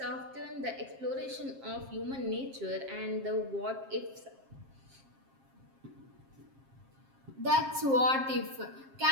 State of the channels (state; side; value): late; left; 7.5 ms